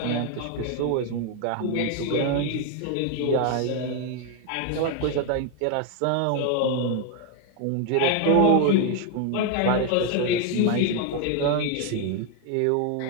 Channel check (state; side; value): different; both; correlation 0.01